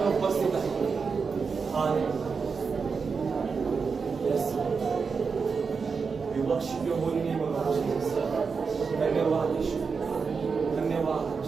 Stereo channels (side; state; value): left; quieter; 5.3 dB